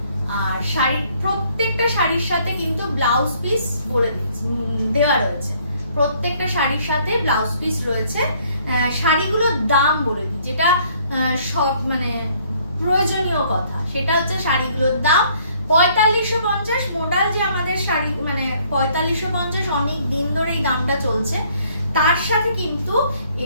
আর শাড়ির প্রত্যেকটা শাড়ির সাথে কিন্তু ব্লাউজ পিস বলে দেওয়া রয়েছে, প্রত্যেকটা শাড়ির সাথে ব্লাউজ পিস রয়েছে। শাড়িগুলোর দাম বলে দিই, যেটা সব মানে প্রয়োজনীয় কথা, সেটা হচ্ছে শাড়িগুলোর দাম 4550। মোডাল যে আমাদের শাড়ি, মানে 4550 অনেক দিন ধরে এই দামটা চলছে। তার সাথে কিন্তু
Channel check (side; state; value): both; inverted; correlation -0.63